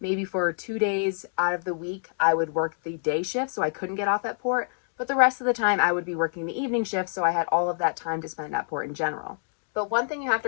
maybe for 2 days out of the week, I would work the day shift, so I couldn't get off at port. But the rest of the time I would be working the evening shift, so I had all of that time to spend at port in general. But one thing you have to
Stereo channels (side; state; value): right; silent; digital silence